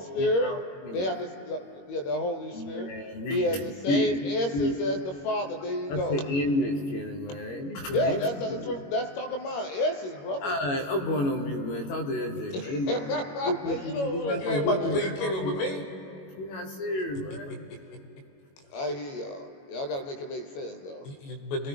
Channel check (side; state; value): right; late; 21 ms